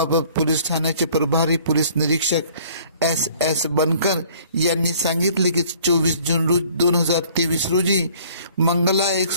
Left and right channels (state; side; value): inverted; both; correlation -0.55